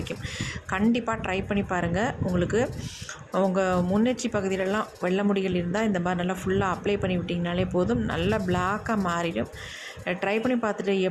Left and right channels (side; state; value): both; identical; correlation 1.00